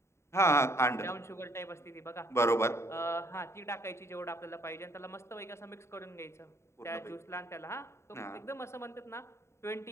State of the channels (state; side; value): late; right; 0.13 ms